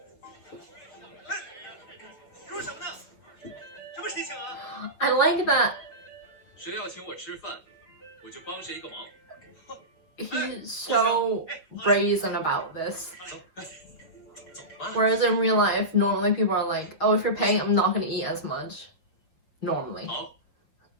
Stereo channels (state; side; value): late; right; 6.5 ms